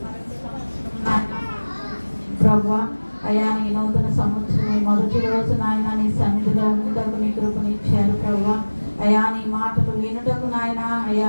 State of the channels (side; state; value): both; inverted; correlation -1.00